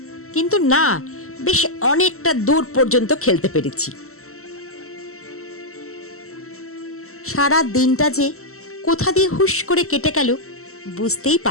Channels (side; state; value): right; late; 0.63 ms